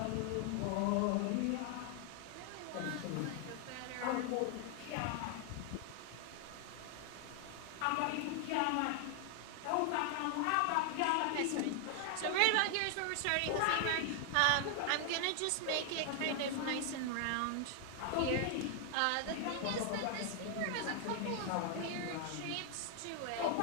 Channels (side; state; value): both; different; correlation 0.00